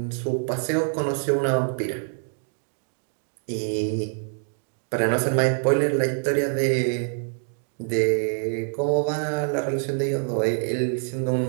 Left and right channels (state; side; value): silent; left; 61 dB below the other